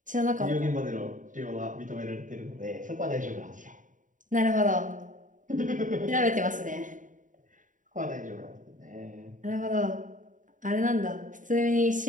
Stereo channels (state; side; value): late; left; 0.38 ms